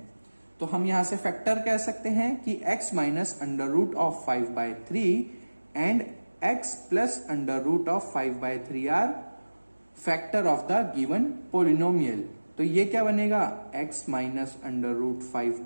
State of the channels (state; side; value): inverted; both; correlation -1.00